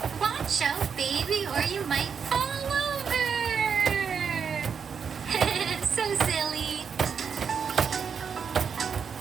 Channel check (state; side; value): quieter; left; 6.6 dB